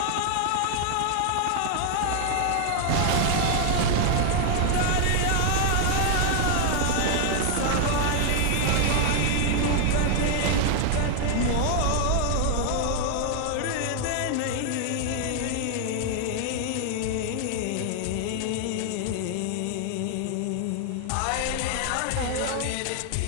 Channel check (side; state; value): both; different; correlation 0.00